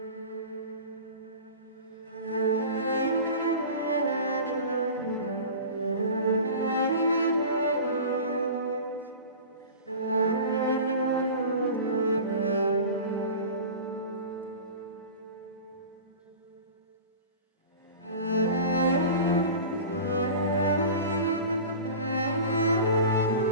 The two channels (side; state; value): both; inverted; correlation -0.35